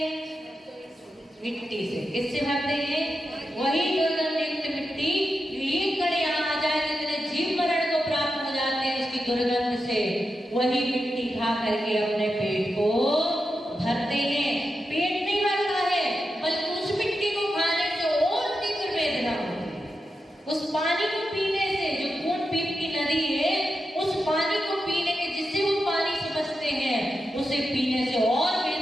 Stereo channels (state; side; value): normal; both; correlation 0.89